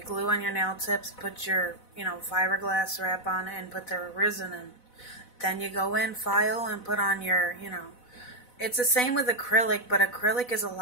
glue on your nail tips, put your, fiberglass wrap on it, and put the resin in. Then you go in, file, and put on your, it's the same with acrylic, but acrylic is a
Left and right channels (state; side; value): late; right; 4.0 ms